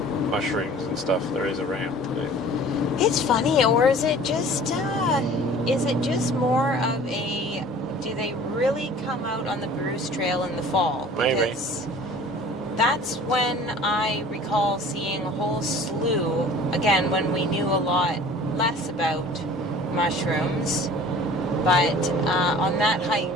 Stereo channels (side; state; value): both; normal; correlation 0.46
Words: mushrooms and stuff there is around. It's funny, or is it just more of a, do they really come out on the Bruce Trail in the fall? Maybe. Because that's when I recall seeing a whole slew, again, when we knew a lot less about mushrooms, but on that